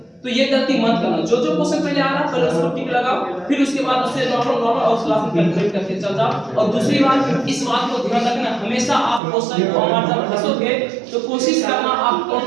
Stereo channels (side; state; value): left; drops out; at 9.2 s